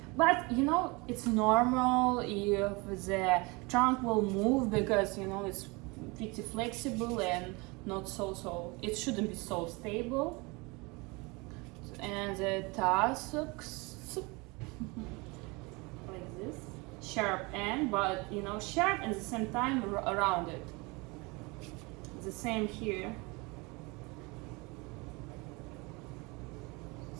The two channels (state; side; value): quieter; left; 26.6 dB